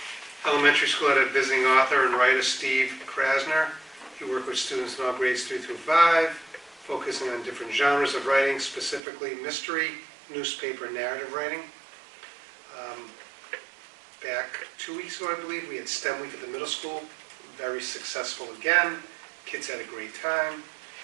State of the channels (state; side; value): drops out; left; at 9.0 s